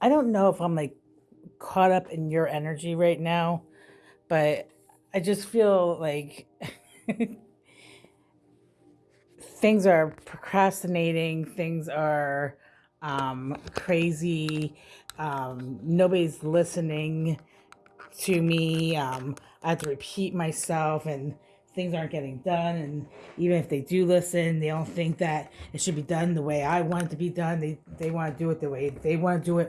don't know if I'm like caught up in your energy right now, but I just feel like things are procrastinating, things are crazy, nobody's listening to me. I have to repeat myself, and things aren't getting done. And even if they do listen, they don't think that it should be done the way I want it to be done. They want to do it the way they want to do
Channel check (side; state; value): both; identical; correlation 1.00